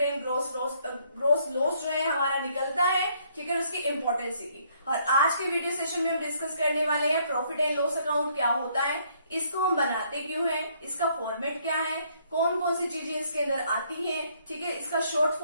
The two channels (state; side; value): inverted; both; correlation -0.67